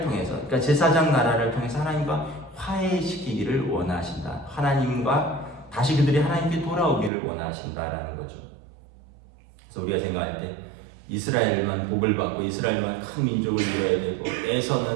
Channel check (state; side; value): drops out; left; at 7.1 s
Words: 통해서 그러니까 제사장 나라를 통해서 하나님과 화해시키기를 원하신다. 하나님과 다시 그들이 하나님께 돌아오기를 원하신다라는 거죠. 그래서 우리가 생각할 때 이스라엘만 복을 받고 이스라엘만 큰 민족을 이뤄야 되고